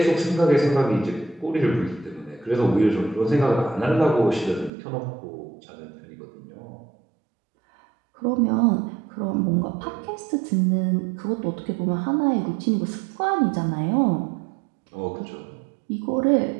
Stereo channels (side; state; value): left; drops out; at 4.7 s